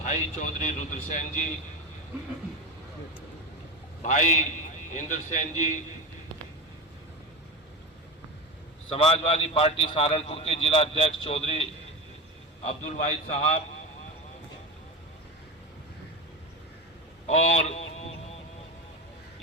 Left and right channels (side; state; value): both; normal; correlation 0.21